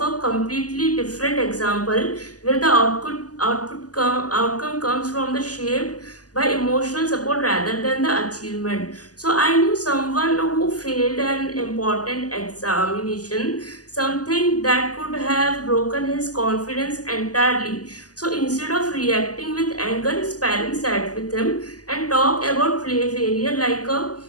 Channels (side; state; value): right; late; 0.67 ms